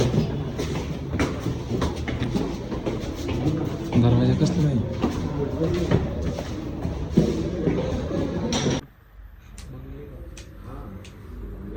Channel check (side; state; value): both; identical; correlation 1.00